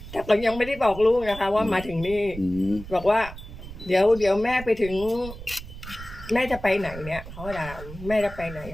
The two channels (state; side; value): noise; right; rumble, 13 dB below the sound